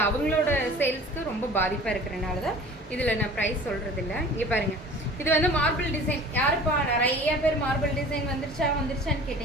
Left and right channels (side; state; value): both; normal; correlation 0.43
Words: அவங்களோட சேல்ஸ்க்கு ரொம்ப பாதிப்பாக இருக்கிறனால தான் இதில் நான் ப்ரைஸ் சொல்கிறது இல்லை. இங்கே பாருங்கள், இது வந்து மார்பிள் டிசைன். யாருப்பா நிறைய பேர் மார்பிள் டிசைன் வந்துருச்சான்னு